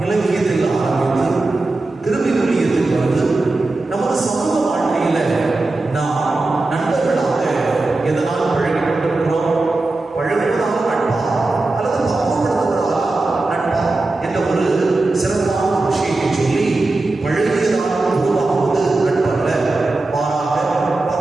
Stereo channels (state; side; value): quieter; left; 3.1 dB